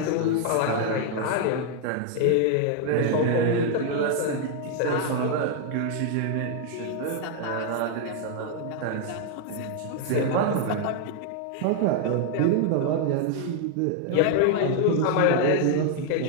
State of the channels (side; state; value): both; different; correlation 0.00